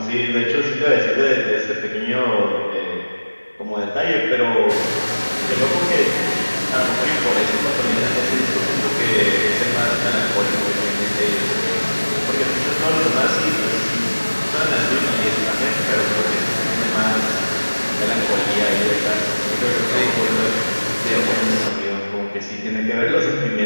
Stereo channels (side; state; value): both; inverted; correlation -1.00